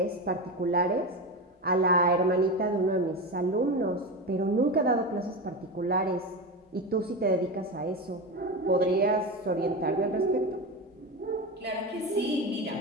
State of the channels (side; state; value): both; normal; correlation 0.20